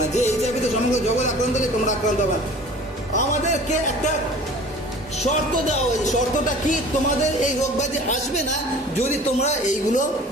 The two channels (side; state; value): both; normal; correlation 0.44